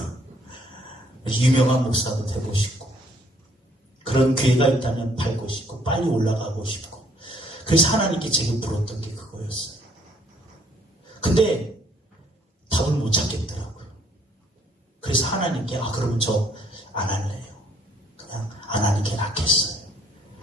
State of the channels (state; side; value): normal; both; correlation 0.64